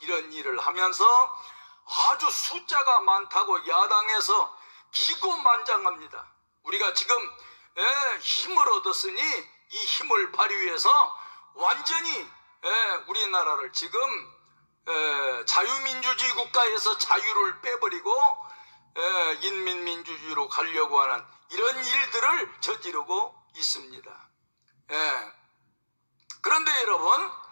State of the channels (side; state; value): both; inverted; correlation -1.00